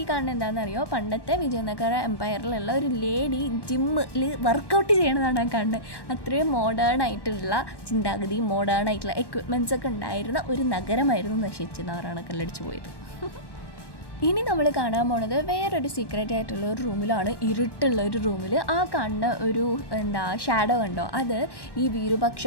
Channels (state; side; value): late; right; 1.1 ms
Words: ഈ കാണുന്നത് എന്താണെന്നറിയോ, പണ്ടത്തെ വിജയനഗര എംപയറിലുള്ള ഒരു ലേഡി ജിമ്മിൽ വർക്കൗട്ട് ചെയ്യണതാണ് ആ കാണുന്നത്. അത്രയും മോഡേൺ ആയിട്ടുള്ള ചിന്താഗതി, മോഡേൺ ആയിട്ടുള്ള എക്വിപ്മെൻറ്റ്സ് ഒക്കെ ഉണ്ടായിരുന്ന ഒരു നഗരമായിരുന്നു നശിച്ച് നാറാണക്കല്ലടിച്ച് പോയത്. ഇനി നമ്മൾ കാണാൻ പോണത് വേറൊരു സീക്രട്ട് ആയിട്ടുള്ള ഒരു റൂമിലാണ്, ഇരുട്ടുള്ള ഒരു റൂമിൽ. ആ കാണുന്ന ഒരു ഷാഡോ കണ്ടോ, അത് ഈ